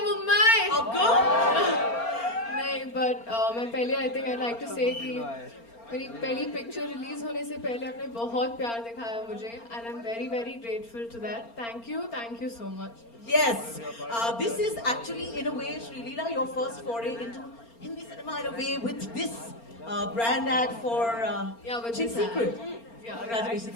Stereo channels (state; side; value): late; right; 4.3 ms